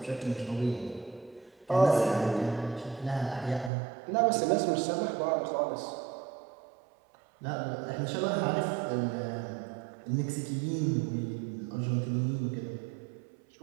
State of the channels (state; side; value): drops out; left; at 3.7 s